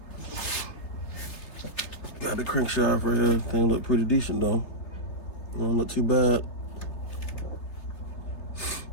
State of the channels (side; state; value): right; late; 3.3 ms